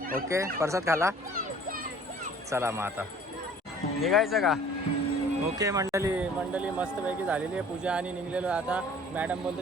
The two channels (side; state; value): both; normal; correlation 0.51